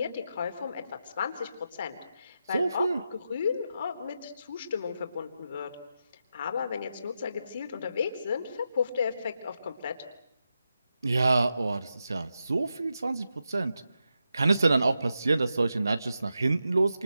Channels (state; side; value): inverted; both; correlation -0.87